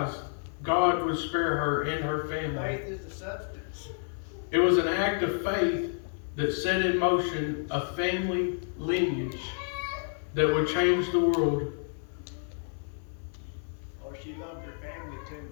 God would spare her and her family. Faith is the substance. It was an act of faith that set in motion a family lineage that would change the world. Oh, she loved her family too.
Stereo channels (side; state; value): right; silent; 56 dB below the other